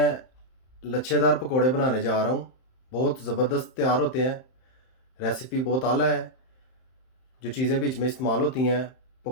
लच्छेदार पकोड़े बनाने जा रहा हूँ। बहुत ज़बरदस्त तैयार होते हैं। रेसिपी बहुत आला है। जो चीज़ें बीच में इस्तेमाल होती हैं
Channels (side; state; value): right; late; 31 ms